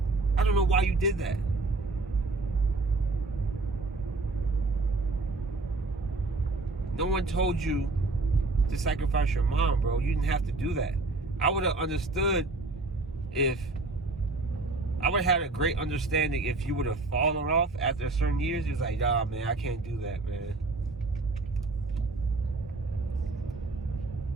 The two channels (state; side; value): quieter; left; 3.3 dB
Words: did that. No one told you to sacrifice your mom, bro. You didn't have to do that. I would have understood if... I would have had a great understanding if you would have fallen off after certain years. It's like, nah, man, I can't do that, man.